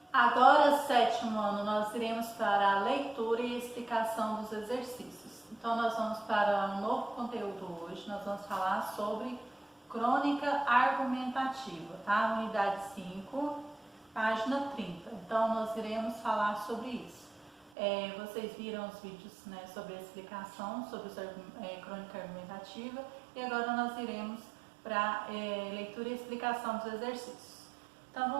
Agora, sétimo ano, nós iremos para a leitura e explicação dos exercícios. Então, nós vamos para um novo conteúdo hoje. Nós vamos falar sobre crônica argumentativa, tá? Unidade 5, página 30. Então, nós iremos falar sobre isso. Vocês viram os vídeos, né, sobre a explicação, sobre crônica argumentativa, e agora nós iremos para leitura e explicação dos exercícios. Então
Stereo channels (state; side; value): drops out; left; at 17.7 s